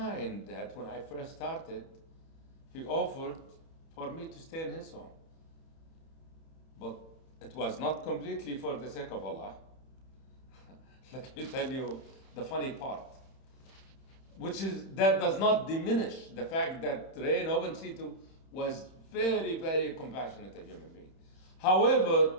that when I first started, he offered for me to stay in his home. But it was not completely for the sake of Allah. Let me tell you the funny part, which is that does not diminish the fact that Ray Novencido was very, very compassionate a human being. However,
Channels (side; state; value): right; late; 31 ms